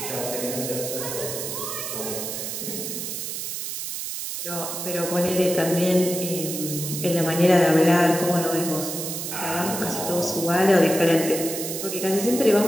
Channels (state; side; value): noise; right; hiss, 5 dB below the sound